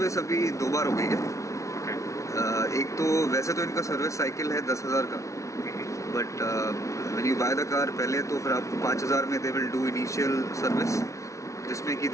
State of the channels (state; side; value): late; right; 0.15 ms